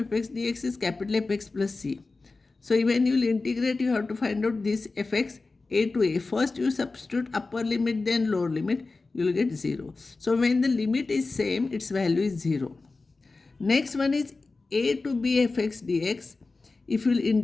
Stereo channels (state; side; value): quieter; right; 3.7 dB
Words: dx is capital Fx plus c. So when you will integrate, you have to find out this fx a to a. First you substitute upper limit then lower limit, you will get 0. So when the limit is same, its value is 0. Next one is a to b fx dx. If you will